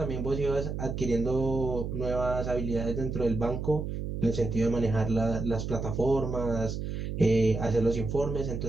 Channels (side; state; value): right; noise; hum, 4 dB below the sound